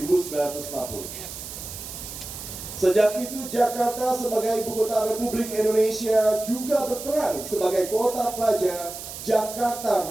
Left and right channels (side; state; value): right; noise; hiss, 10 dB below the sound